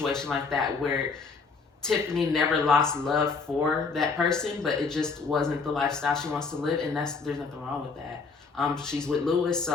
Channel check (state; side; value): quieter; right; 4.6 dB